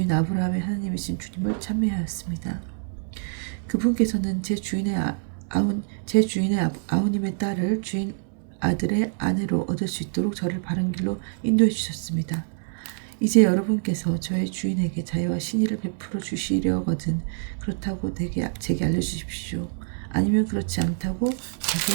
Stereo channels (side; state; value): left; silent; digital silence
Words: 아브라함의 하나님이신 주님을 찬미하였습니다. 그분께서는 제 주인의 아우님의 딸을 주인 아들의 아내로 얻을 수 있도록 저를 바른 길로 인도해 주셨습니다. 이제 여러분께서 저의 주인에게 자유와 신의를 베풀어 주시려거든 그렇다고 제게 알려주십시오. 아니면 그렇지 않다고 제게